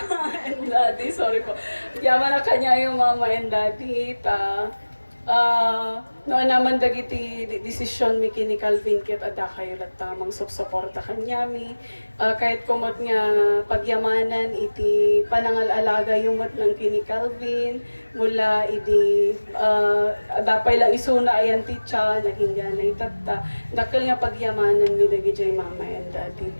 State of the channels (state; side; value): inverted; both; correlation -1.00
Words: and daddy, sorry po. Agyaman na kanya yung mama and daddy, noon naman dagiti desisyon mi kini Calvin ket ada kayo lat tamang suporta kanya mi. Kahit kumot nga pagyamanan iti panangal-alaga yumat ng kini Calvin mula iti dapay lang isuna ayan titsa naging ganay tatta dakkel nga pagyamanan mi dagiti mama and daddy.